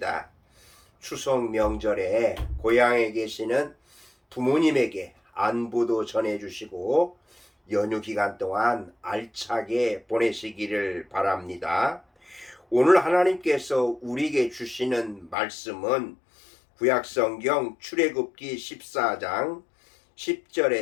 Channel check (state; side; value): drops out; right; at 15.4 s